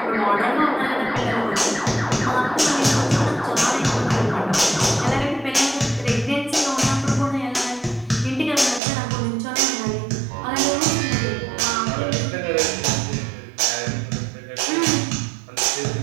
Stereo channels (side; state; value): left; drops out; at 8.8 s